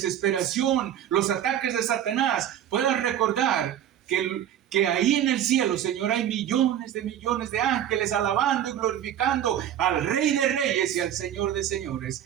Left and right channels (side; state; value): left; quieter; 10.5 dB